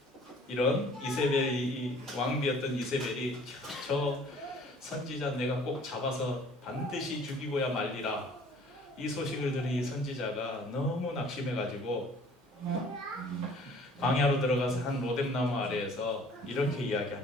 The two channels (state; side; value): normal; both; correlation 0.53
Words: 이런 이세벨이 왕비였던 이세벨이 저 선지자 내가 꼭 잡아서 반드시 죽이고야 말리라. 이 소식을 들은 이 선지자가 너무 낙심해가지고 광야로 들어가서 한 로뎀나무 아래에서 이렇게